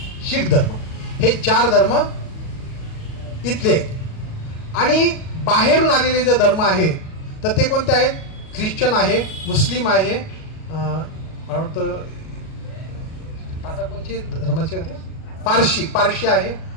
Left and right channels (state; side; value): late; right; 37 ms